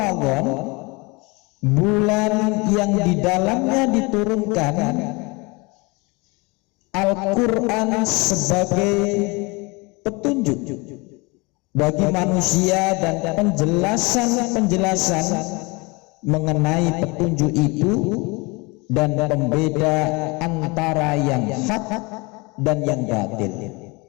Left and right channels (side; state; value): right; quieter; 26.9 dB